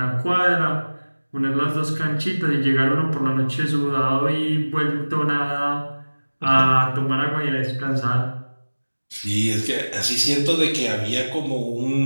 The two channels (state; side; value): inverted; both; correlation -1.00